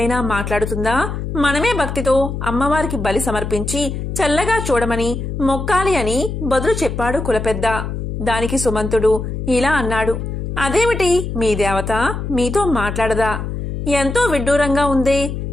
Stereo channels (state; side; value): noise; left; hum, 5 dB below the sound